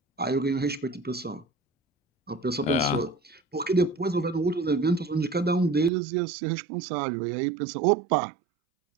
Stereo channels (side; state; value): left; drops out; at 5.9 s